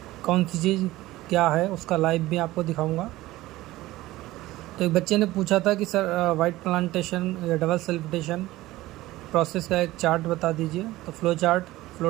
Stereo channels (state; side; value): quieter; left; 17.3 dB